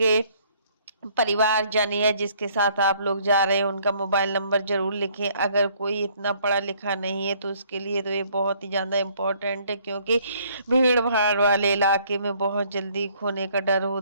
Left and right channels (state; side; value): inverted; both; correlation -0.62